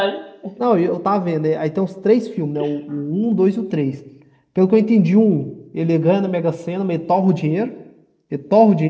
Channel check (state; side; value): identical; both; correlation 1.00